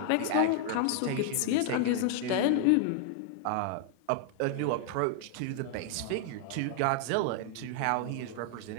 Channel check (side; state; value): both; different; correlation 0.00